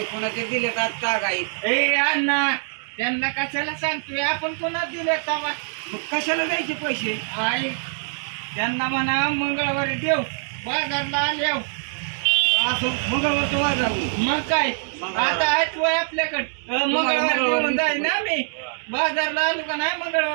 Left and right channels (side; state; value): left; silent; digital silence